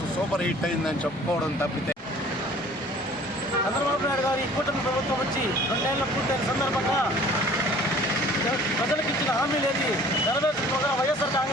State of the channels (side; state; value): both; normal; correlation 0.50